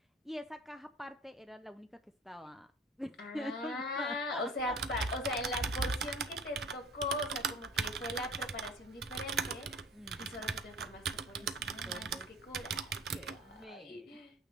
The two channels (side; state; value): both; normal; correlation 0.43